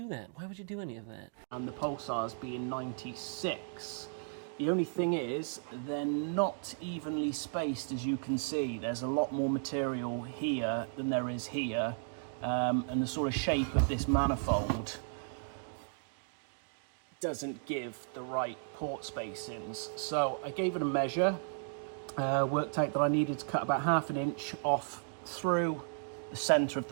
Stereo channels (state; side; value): silent; left; digital silence